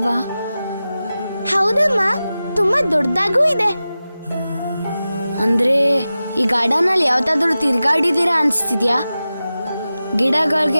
ಹೌದಮ್ಮ, ತುಂಬಾ ದೊಡ್ಡದಾಗೂ ಇದೆ. ಅಂದ್ರೆ ಈ ಗಾರ್ಡನ್ ಅಲ್ಲಿ ಯಾವತ್ತಾದ್ರೂ ತಿರ್ಗಾಡಿದೀರಾ ಅನ್ಸ್ತಿದ್ಯಾ?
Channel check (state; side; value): inverted; both; correlation -0.94